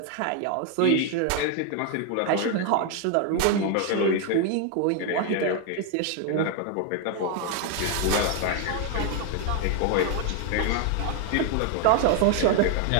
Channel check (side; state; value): both; different; correlation 0.01